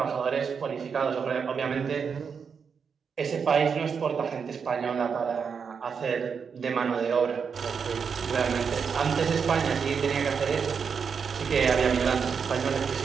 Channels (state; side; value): quieter; left; 6.2 dB